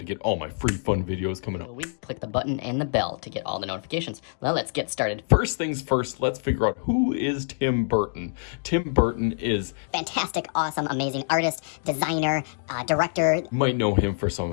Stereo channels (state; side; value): silent; right; digital silence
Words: get all my free fun videos coming up. Click the button and the bell to get all the notifications. Well, let's get started. First things first, let's figure out who is Tim Burton. Tim Burton is fantastic, awesome, amazing artist, designer, director. You might know him for some